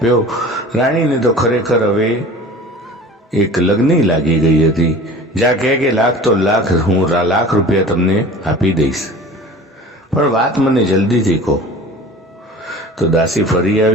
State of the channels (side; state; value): both; normal; correlation 0.41